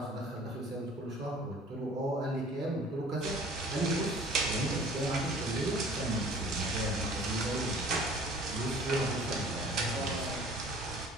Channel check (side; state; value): both; normal; correlation 0.49